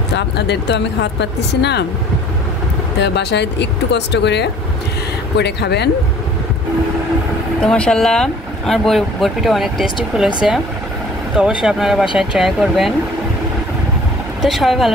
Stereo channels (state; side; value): normal; both; correlation 0.51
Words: তো আপনাদের তো আমি খাওয়াতে পারতেছি না, তো বাসায় একটু কষ্ট করে খাবেন। তো মাশাআল্লাহ আমার বরফিটা অনেক টেস্টি ফুল হয়েছে, তো অবশ্যই আপনারা বাসায় ট্রাই করবেন। তো সবাই